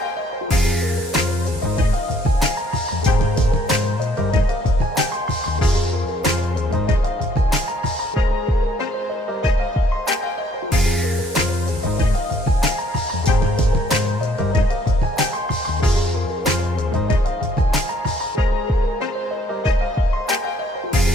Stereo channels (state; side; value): normal; both; correlation 0.63